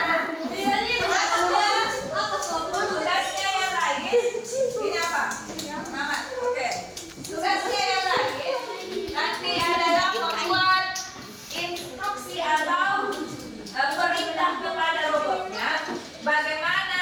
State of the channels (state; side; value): identical; both; correlation 1.00